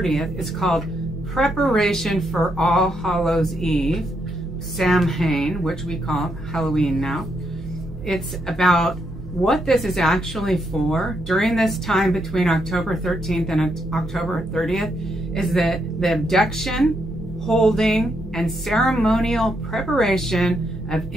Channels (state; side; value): noise; right; hum, 16 dB below the sound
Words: is called Preparation for All Hallows Eve, Samhain, which we call Halloween now. It's about what this is actually for. During this time between October 13th and October 30th is the abduction, holding, and ceremonial preparation of